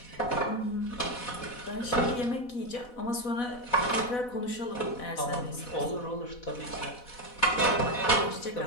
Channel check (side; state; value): right; late; 4.1 ms